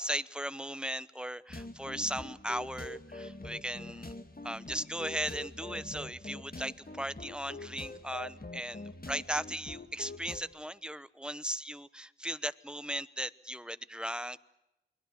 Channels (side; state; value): both; normal; correlation 0.60